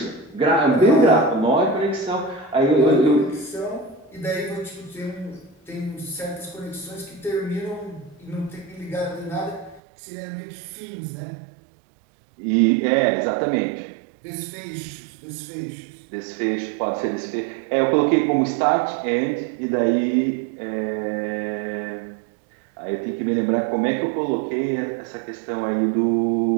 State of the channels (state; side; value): drops out; left; at 9.8 s